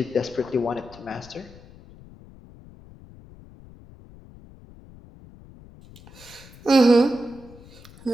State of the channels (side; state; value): left; noise; rumble, 21 dB below the sound